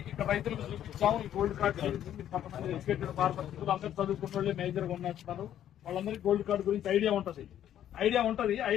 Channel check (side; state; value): right; quieter; 10.9 dB